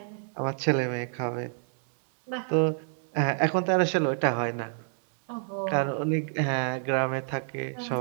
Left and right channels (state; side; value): silent; left; digital silence